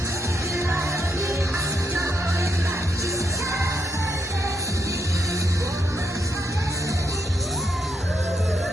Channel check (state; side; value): normal; both; correlation 0.79